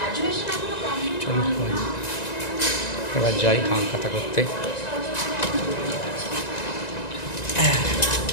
চলো এবার যাই হালখাতা করতে।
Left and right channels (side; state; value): right; late; 1.9 ms